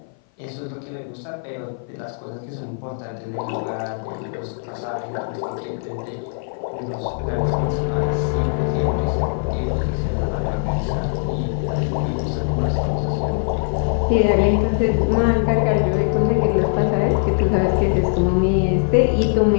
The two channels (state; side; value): silent; right; 57 dB below the other